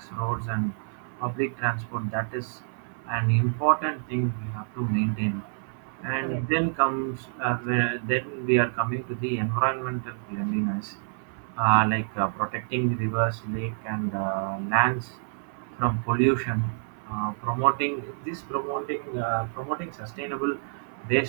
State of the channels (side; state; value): left; silent; 60 dB below the other